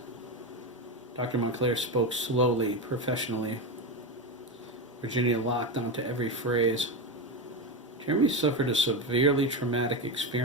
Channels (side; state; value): both; normal; correlation 0.15